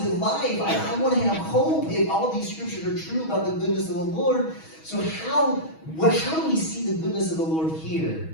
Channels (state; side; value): late; right; 6.3 ms